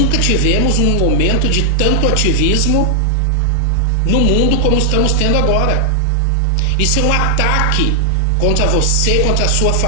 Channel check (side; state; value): both; different; correlation 0.00